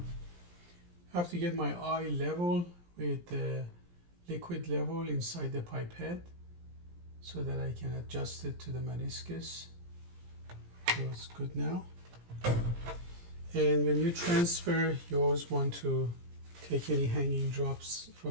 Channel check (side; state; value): left; late; 17 ms